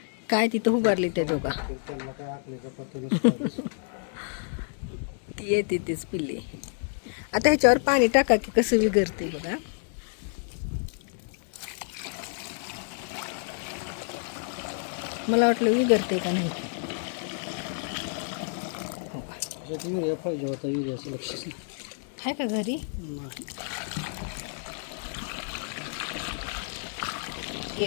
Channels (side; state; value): right; silent; 59 dB below the other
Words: काय तिथं उभारली त्या दोघा तर त्यांना काय आखलीचा पत्ता नसतो. ती येते तीच पिल्ली. आता ह्याच्यावर पाणी टाका की कसं विगरते बघा. मला वाटलं विगरते का नाही. युरिया पाहिजे होता युरियाचं लक्षच नाही. आहे का घरी